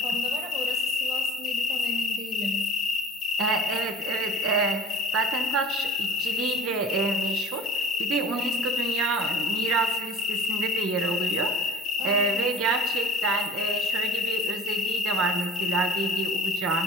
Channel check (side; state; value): both; normal; correlation 0.46